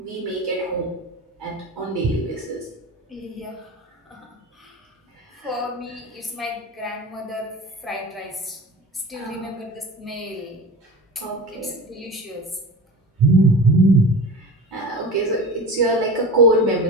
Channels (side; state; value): both; normal; correlation 0.31